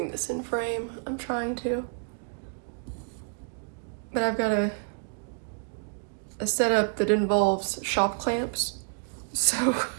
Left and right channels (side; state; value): left; quieter; 39.7 dB